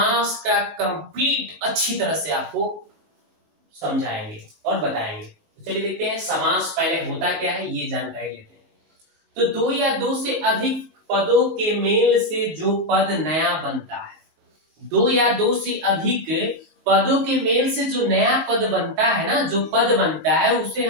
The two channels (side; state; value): left; late; 19 ms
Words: का कंप्लीट अच्छी तरह से आपको समझाएंगे और बताएंगे। तो चलिए देखते हैं समास पहले होता क्या है, ये जानकारी लेते हैं। तो दो या दो से अधिक पदों के मेल से जो पद नया बनता है, दो या दो से अधिक पदों के मेल से जो नया पद बनता है ना, जो पद बनता है उसे